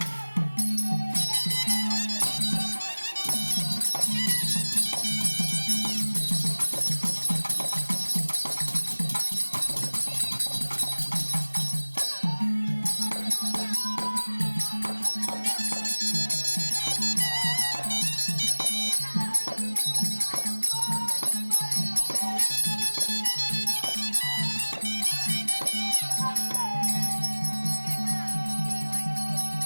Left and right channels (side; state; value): both; inverted; correlation -1.00